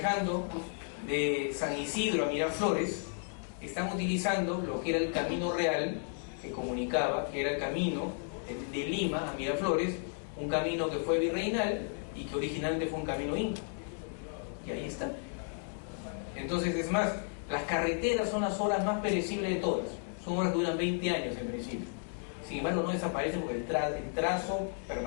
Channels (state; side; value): silent; right; 55 dB below the other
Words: de San Isidro a Miraflores, están utilizando lo que era el Camino Real, que comunicaba, que era el camino de Lima a Miraflores, un camino que fue virreinal y que originalmente fue un camino inca. Y ahí está. Entonces, es más, las carreteras son las obras más perecibles de todas. Son obras que duran 20 años en principio. Sin embargo, no desaparecen porque el trazo